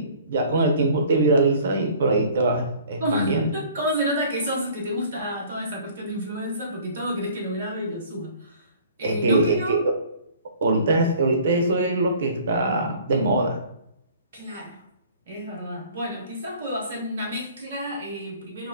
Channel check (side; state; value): both; inverted; correlation -0.51